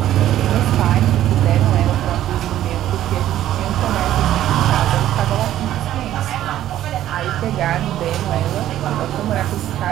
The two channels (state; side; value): quieter; left; 12.6 dB